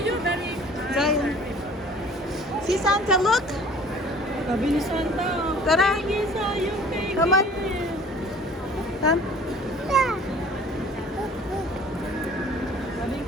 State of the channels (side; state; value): both; normal; correlation 0.49